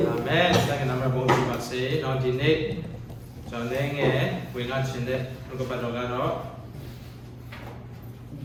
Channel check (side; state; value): both; identical; correlation 1.00